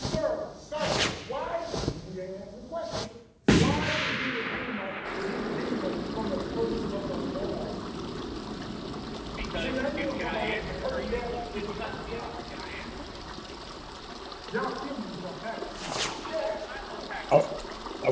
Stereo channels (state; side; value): identical; both; correlation 1.00